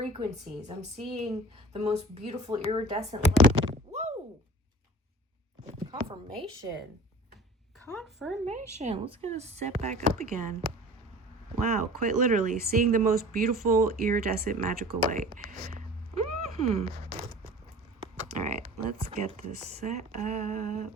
I'm seeing the most beautiful iridescent light. Whoa! Confirmation. Let's get us set back up again. Wow, quite literally seeing the most beautiful iridescent magical light. All right, let's get this set up.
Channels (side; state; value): both; normal; correlation 0.42